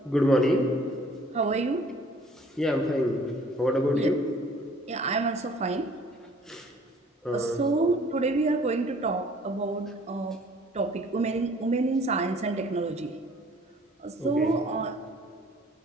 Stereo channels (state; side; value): normal; both; correlation 0.55